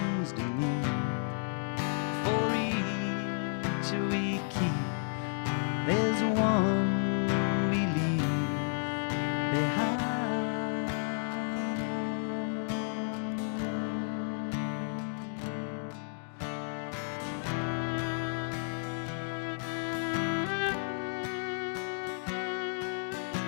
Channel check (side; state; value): right; silent; 56 dB below the other